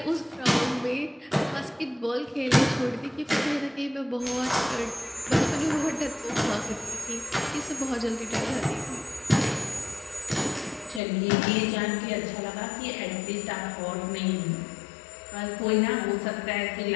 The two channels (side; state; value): right; drops out; at 11.0 s